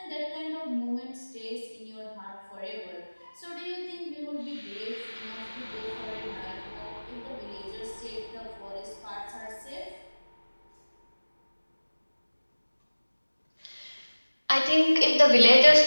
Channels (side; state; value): both; inverted; correlation -1.00